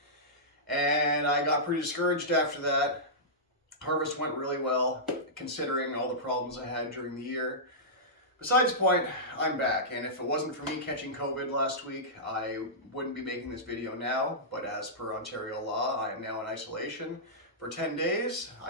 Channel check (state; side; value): normal; both; correlation -0.14